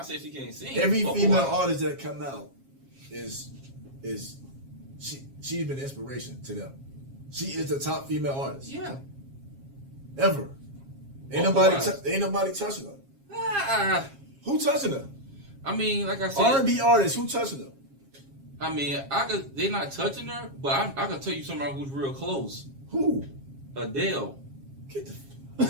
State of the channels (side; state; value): left; late; 7.4 ms